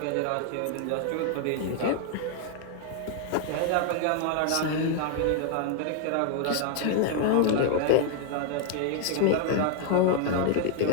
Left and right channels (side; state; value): both; different; correlation 0.00